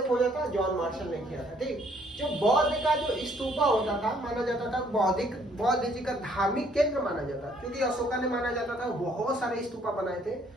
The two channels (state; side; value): normal; both; correlation 0.64